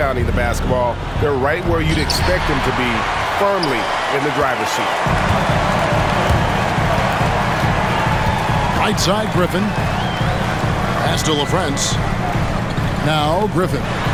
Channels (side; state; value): both; identical; correlation 1.00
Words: the basketball, they're right where you'd expect them to be, firmly in the driver's seat. Right side, Griffin. Pass to LaFrance. Now Griffin.